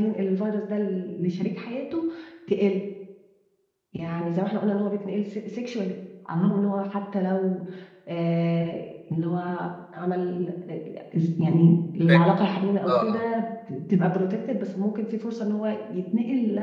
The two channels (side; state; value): both; identical; correlation 1.00